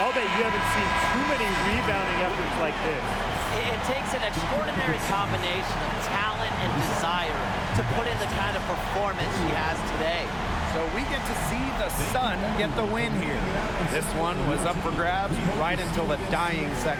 I'll bet you haven't seen too many rebounding efforts like this. It takes an extraordinary combination of talent and desire to put in the kind of performance she has today. So we get to see the Sun get the win here. This one was up for grabs right until the dying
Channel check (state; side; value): identical; both; correlation 1.00